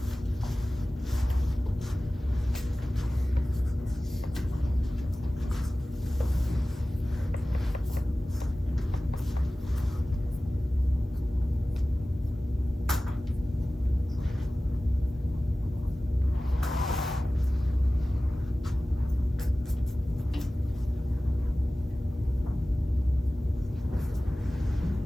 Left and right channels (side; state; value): both; normal; correlation 0.97